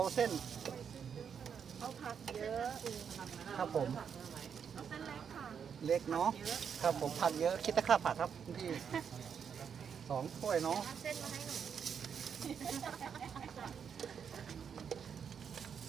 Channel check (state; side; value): quieter; left; 7.3 dB